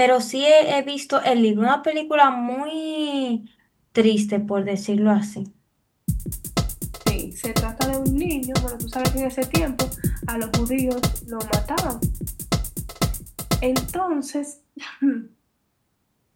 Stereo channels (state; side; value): identical; both; correlation 1.00